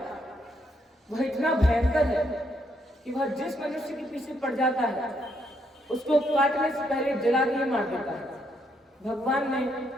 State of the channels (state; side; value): normal; both; correlation 0.75